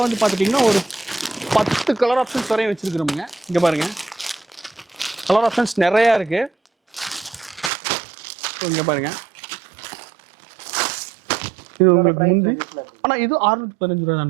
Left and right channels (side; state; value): left; drops out; at 7.7 s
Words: வந்து பார்த்துட்டிங்கன்னா ஒரு 10 கலர் ஆப்ஷன்ஸ் வரையும் வச்சுருக்குறோமுங்க. இங்கே பாருங்கள், கலர் ஆப்ஷன்ஸ் நிறையா இருக்குது. இங்கே பாருங்கள், இது உங்களுக்கு முந்தி, ஆனால் இது 615 ரூபா